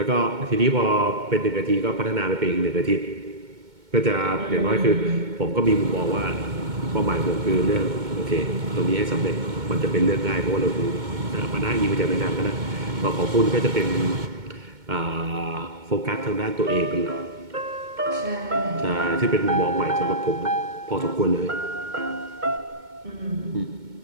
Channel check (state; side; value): late; left; 2.2 ms